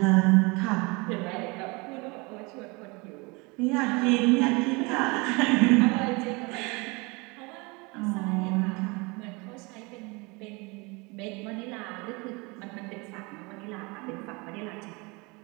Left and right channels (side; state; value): left; quieter; 27.3 dB